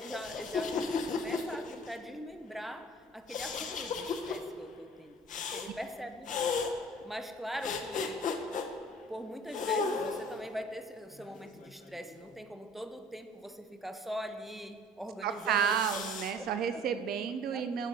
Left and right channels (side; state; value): both; normal; correlation 0.49